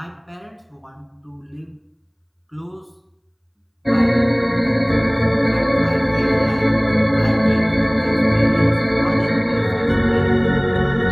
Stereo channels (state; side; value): identical; both; correlation 1.00